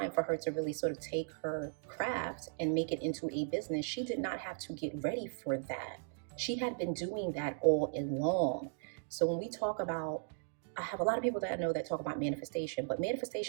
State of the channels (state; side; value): silent; left; digital silence